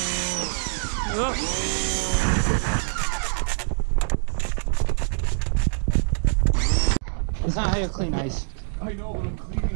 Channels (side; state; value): left; silent; digital silence